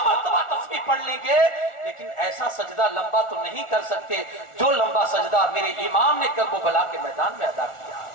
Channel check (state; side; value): late; right; 1.4 ms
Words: مرتبہ تسبیح پڑھ لیں گے، لیکن ایسا سجدہ لمبا تو نہیں کر سکتے جو لمبا سجدہ میرے امام نے کربلا کے میدان میں ادا کیا۔